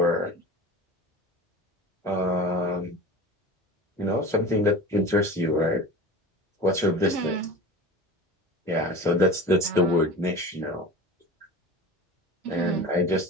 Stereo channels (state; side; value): normal; both; correlation 0.34